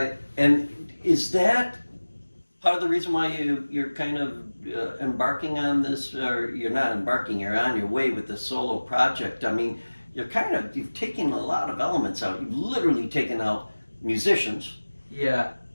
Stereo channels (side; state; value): both; inverted; correlation -1.00